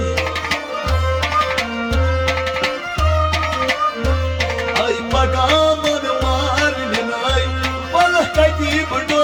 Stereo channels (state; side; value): identical; both; correlation 1.00